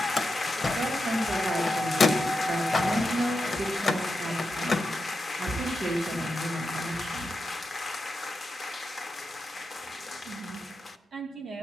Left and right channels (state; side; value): normal; both; correlation 0.88